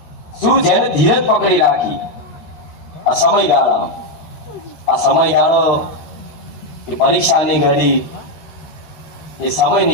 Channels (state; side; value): late; right; 13 ms